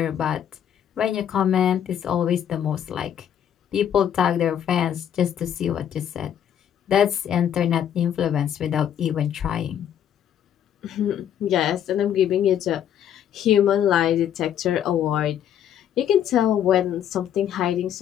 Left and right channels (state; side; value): quieter; right; 9.7 dB